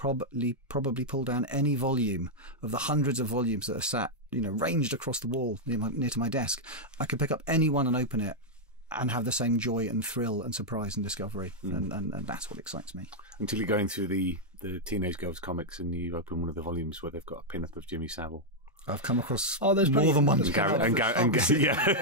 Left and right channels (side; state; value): both; normal; correlation -0.03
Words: pull down any volume of the hundreds of volumes that are sat, ranged across the wall near to my desk. I could pick up any one and open it and have the same joy and thrill and surprise and discovery, and that's what excites me. Until you're going through the Teenage Girls comics and you open one of the volumes where they've got a pin-up of Jimmy Savile. I've come across more than one.